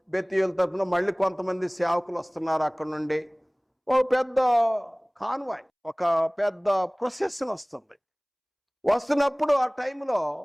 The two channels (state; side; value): identical; both; correlation 1.00